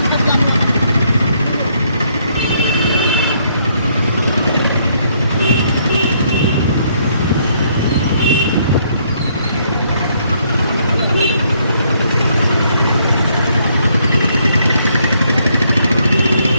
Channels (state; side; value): inverted; both; correlation -0.70